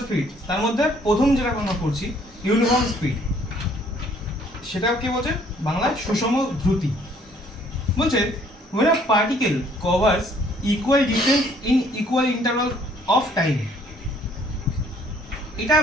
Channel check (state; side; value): normal; both; correlation 0.61